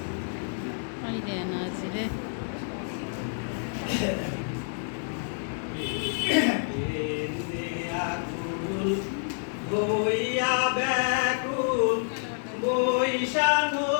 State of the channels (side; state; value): right; silent; digital silence